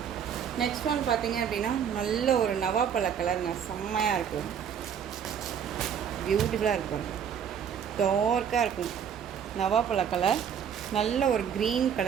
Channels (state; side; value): quieter; left; 8.1 dB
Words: நெக்ஸ்ட் ஒன் பார்த்தீங்க அப்படின்னா நல்ல ஒரு நவாப்பழ கலருங்க, செம்மையாக இருக்குது. பியூட்டிஃபுல்லாக இருக்கும். டார்க்காக இருக்கும். நவாப்பழ கலர், நல்ல ஒரு க்ரீன்